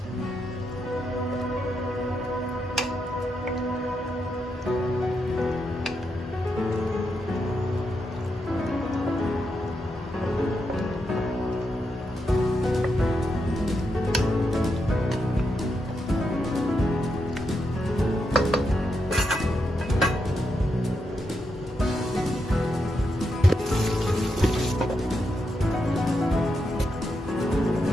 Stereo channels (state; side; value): normal; both; correlation 0.83